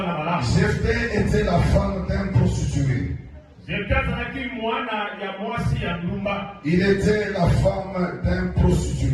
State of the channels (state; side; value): identical; both; correlation 1.00